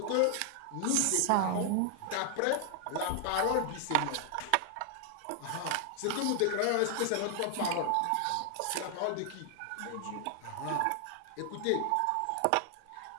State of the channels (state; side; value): different; both; correlation 0.00